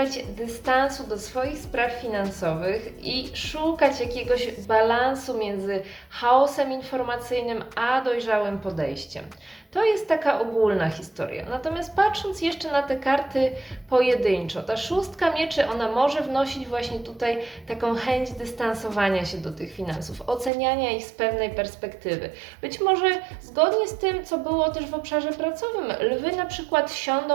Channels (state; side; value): drops out; left; at 20.5 s